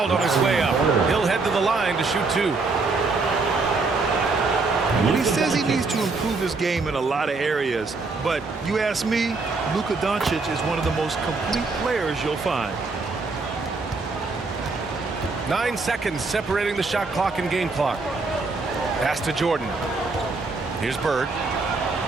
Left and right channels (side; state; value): left; quieter; 3.9 dB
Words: on his way up. He'll head to the line to shoot 2. Well, he says he needs to improve his game in a lot of areas, but you ask me, Luka Doncic is one of the most complete players you'll find. 9 seconds separating the shot clock and game clock. Pass to Jordan. Here's Bird.